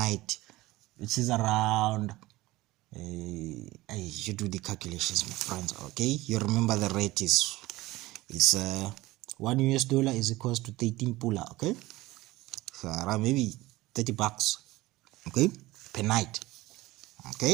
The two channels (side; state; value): left; quieter; 19.0 dB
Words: which is around you do the calculations, my friends. Okay, you remember the rate is $1 is equals to 13 pula. Okay, so around maybe $30. Okay, per night.